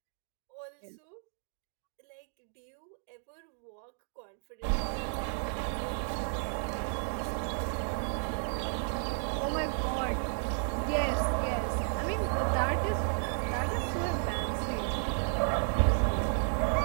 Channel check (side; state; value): left; silent; digital silence